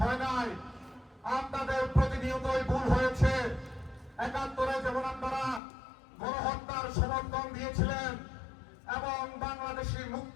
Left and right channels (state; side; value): drops out; right; at 5.6 s